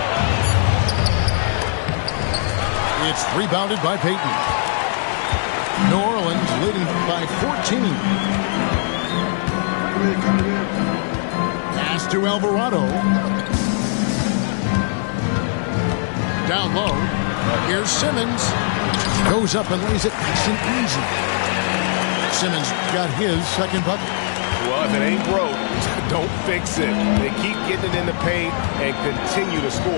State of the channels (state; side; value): silent; right; 66 dB below the other